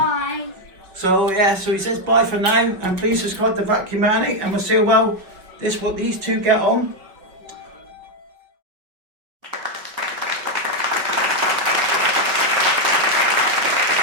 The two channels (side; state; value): left; late; 5.2 ms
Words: So yeah, so he says bye for now, and please subscribe to Vacuum Addict, and we'll see how well these two get on.